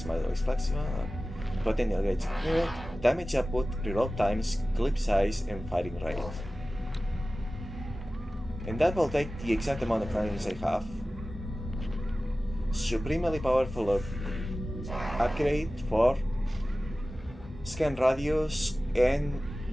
model is flexible, potential gauge accurate, damage output, reload times, clip size, and firing rate. And that will take the exact amount of rounds I have. Supremely powerful upgrade for scan radius and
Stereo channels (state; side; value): normal; both; correlation 0.96